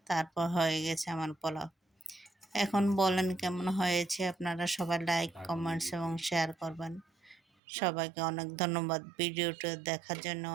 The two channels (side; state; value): left; drops out; at 7.4 s